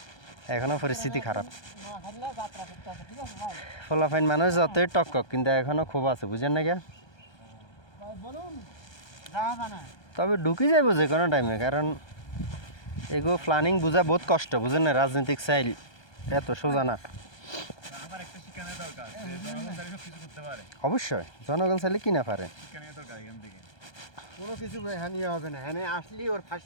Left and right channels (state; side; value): late; right; 1.3 ms